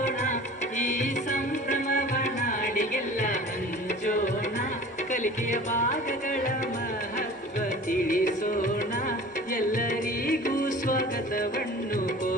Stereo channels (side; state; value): both; normal; correlation 0.42